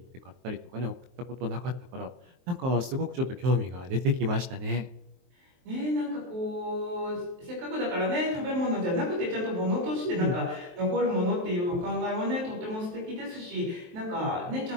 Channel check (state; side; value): late; left; 23 ms